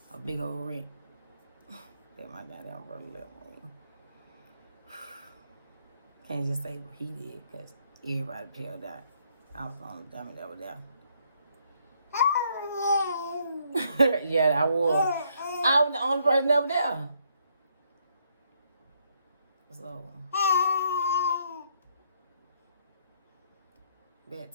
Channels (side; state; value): both; inverted; correlation -0.71